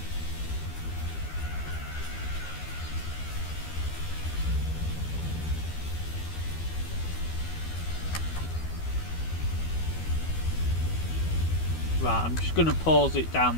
Right, I'm just going to pause it down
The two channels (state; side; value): late; right; 12 ms